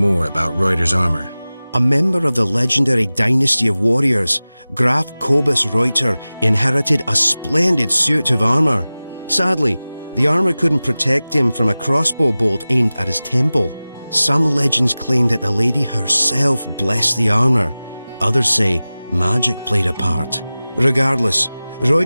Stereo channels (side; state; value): both; inverted; correlation -0.97